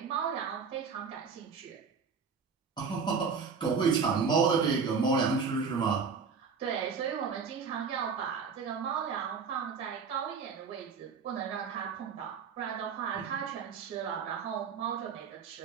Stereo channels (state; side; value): quieter; left; 5.6 dB